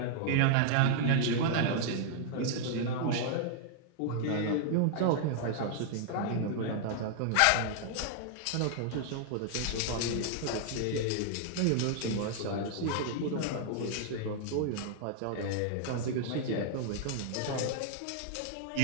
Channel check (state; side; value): different; both; correlation 0.00